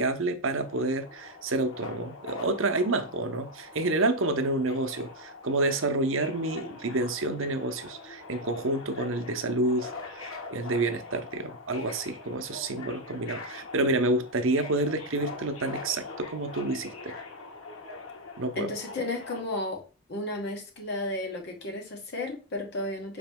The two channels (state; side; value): normal; both; correlation 0.00